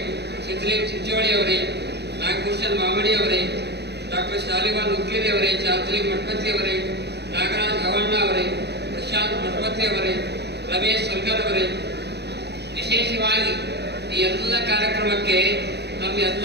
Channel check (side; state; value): left; late; 0.49 ms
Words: ಸಿದ್ಧಲಿಂಗ್ ಚಿಂಚೋಳಿ ಅವರೇ, ನಾಗಭೂಷಣ್ ಮಾಮಡಿ ಅವರೇ, ಡಾಕ್ಟರ್ ಶಾಲಿವಾನ್ ಉಕ್ಕೇರಿ ಅವರೇ, ಚಾರ್ಜಲಿಂಗ್ ಮಠಪತಿ ಅವರೇ, ನಾಗರಾಜ್ ಹವಣ್ಣ ಅವರೇ, ಪ್ರಶಾಂತ್ ಮಠಪತಿ ಅವರೇ, ರಮೇಶ್ ಸಲ್ಗರ್ ಅವರೇ, ವಿಶೇಷವಾಗಿ ಈ ಎಲ್ಲ ಕಾರ್ಯಕ್ರಮಕ್ಕೆ ತಮ್ಮ